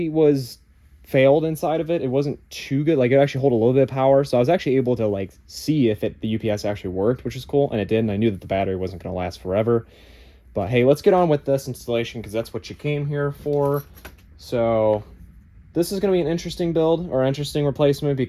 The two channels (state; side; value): identical; both; correlation 1.00